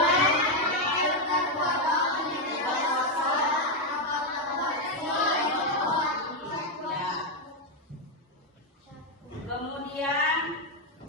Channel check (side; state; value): both; normal; correlation 0.04